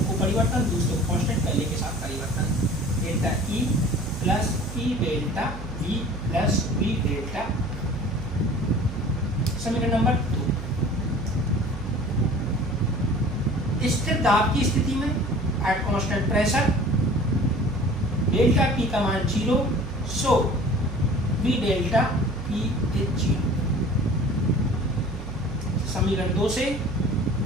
को परिवर्तन, दूसरे को कांस्टेंट पहले के साथ परिवर्तन। Delta E plus E delta V plus V delta. समीकरण नंबर 2। स्थिर दाब की स्थिति में at constant pressure delta P का मान 0, सो V डेल्टा P इज 0। समीकरण 2 से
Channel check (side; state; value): right; noise; hum, 11 dB below the sound